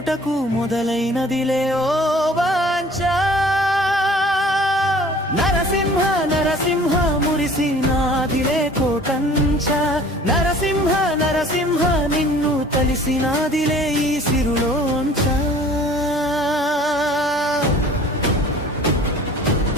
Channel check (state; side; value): normal; both; correlation 0.49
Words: మొదలైనదిలే ఓ వాంఛ నరసింహ నరసింహ మురిసినాదిలే కోటంచ నరసింహ నరసింహ నిన్ను తలిసినాదిలే ఈ సిరులోంచ